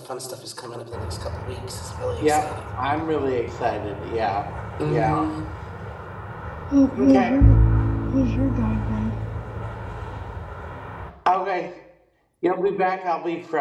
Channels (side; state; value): both; identical; correlation 1.00